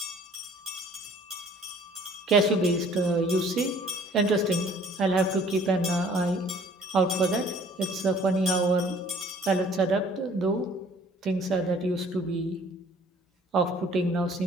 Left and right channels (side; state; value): both; normal; correlation 0.55